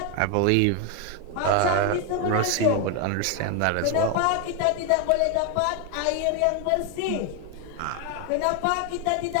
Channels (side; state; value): both; different; correlation 0.01